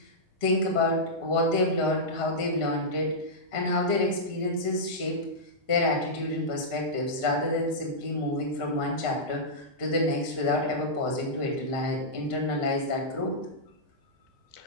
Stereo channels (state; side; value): normal; both; correlation -0.12